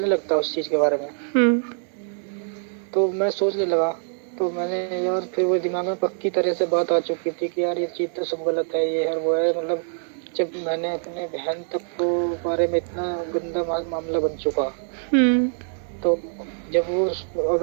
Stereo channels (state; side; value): silent; left; digital silence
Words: लगता है उस चीज के बारे में। हम्म। तो मैं सोचने लगा, तो मैंने यार, फिर वो दिमाग में पक्की तरह से बात आ चुकी थी कि यार ये चीज तो सब गलत है, ये है वो है, मतलब जब मैंने अपने बहन तक को बारे में इतना गंदा मामला बन चुका, तो जब वो